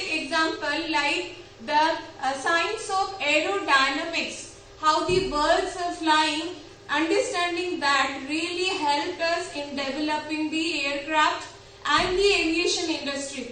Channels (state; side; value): identical; both; correlation 1.00